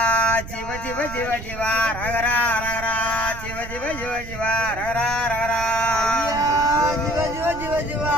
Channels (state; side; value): noise; right; rumble, 11 dB below the sound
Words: சிவ சிவ சிவ சிவா ரகரா ரகரா சிவ சிவ சிவ சிவா ரகரா ரகரா சிவ சிவ சிவ சிவா